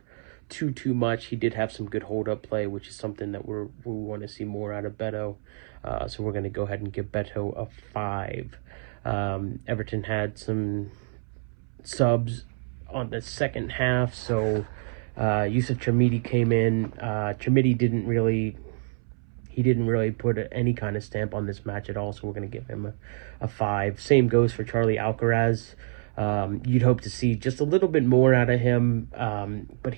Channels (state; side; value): silent; left; 60 dB below the other